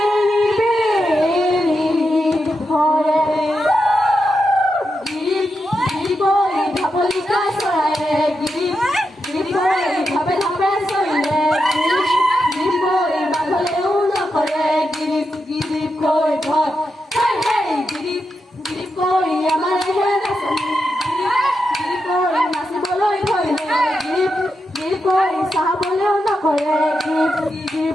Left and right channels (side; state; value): both; normal; correlation 0.86